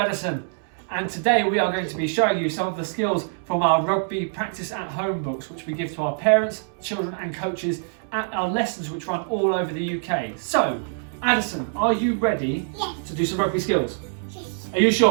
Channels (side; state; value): left; silent; 62 dB below the other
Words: And today we are going to be showing you some of the skills from our rugby practice at home books, which we give to our parents, children and coaches at our lessons which run all over the UK. So, Addison, are you ready to do some rugby skills? Yes. Are you